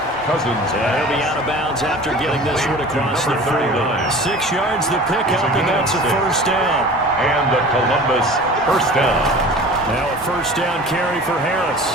Cousins. He'll be out of bounds after getting this one across the 40. 6 yards the pickup, and that's a first down. And the Columbus first down. Now a first down carry for Harris.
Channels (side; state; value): both; normal; correlation 0.41